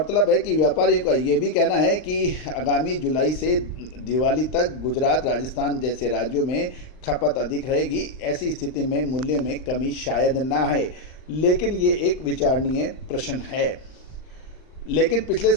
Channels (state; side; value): late; right; 39 ms